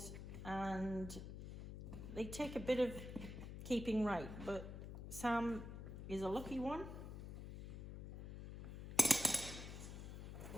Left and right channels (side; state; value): left; noise; hum, 8 dB below the sound